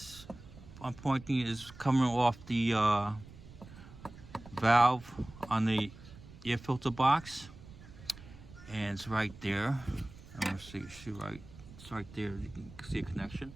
I'm pointing, is coming off the valve on the air filter box, and it's right there. I'm gonna see right. It's right there. You can see a connection,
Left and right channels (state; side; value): noise; right; rumble, 18 dB below the sound